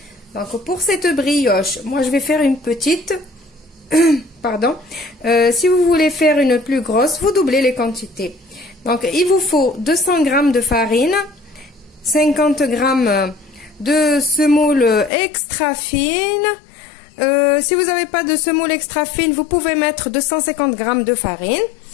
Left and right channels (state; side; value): drops out; right; at 15.1 s